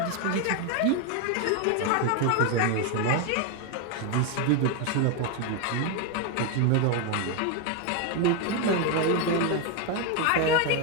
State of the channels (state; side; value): different; both; correlation 0.01